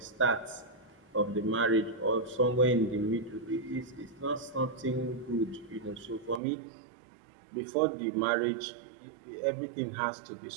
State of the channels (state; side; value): drops out; left; at 6.4 s